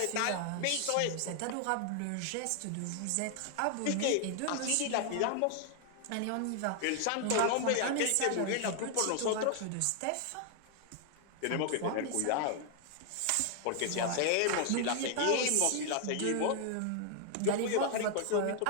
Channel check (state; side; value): different; both; correlation 0.00